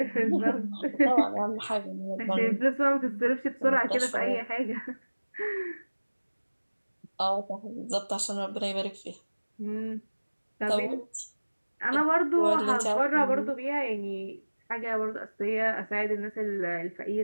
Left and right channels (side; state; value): both; inverted; correlation -1.00